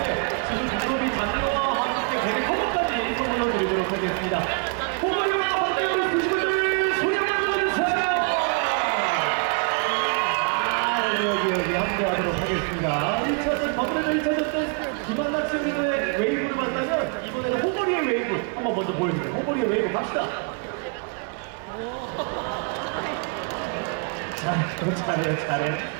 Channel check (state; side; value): quieter; left; 39.0 dB